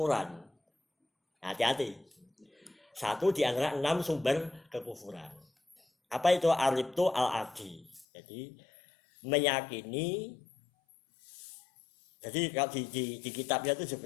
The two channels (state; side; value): drops out; right; at 8.1 s